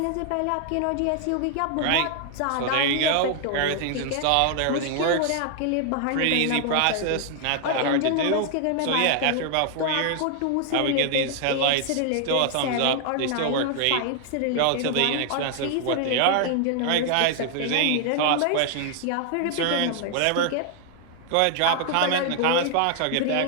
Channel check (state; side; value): different; both; correlation 0.00